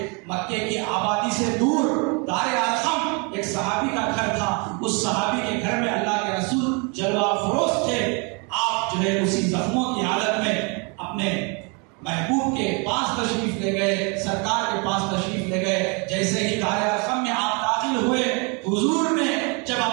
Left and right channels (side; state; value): left; quieter; 32.9 dB